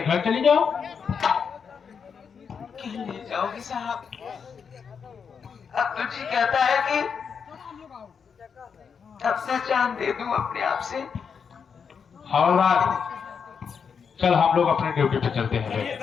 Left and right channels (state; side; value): quieter; right; 6.4 dB